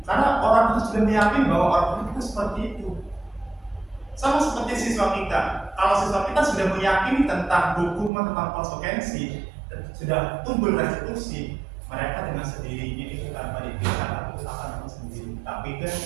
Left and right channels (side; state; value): left; drops out; at 8.1 s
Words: karena orang itu sudah meyakini bahwa orang itu seperti itu. Sama seperti siswa kita, kalau siswa kita sudah meyakini tentang hukuman, tentang konsekuensi, sudah tumbuh restitusi, mereka dengan sendirinya itu tanpa dipikirkan itu akan sendiri. Tapi kan